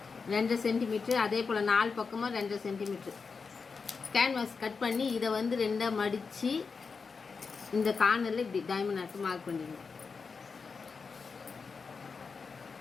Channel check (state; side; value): quieter; right; 5.0 dB